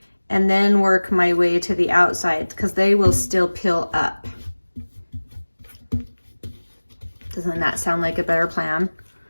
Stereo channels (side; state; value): both; inverted; correlation -1.00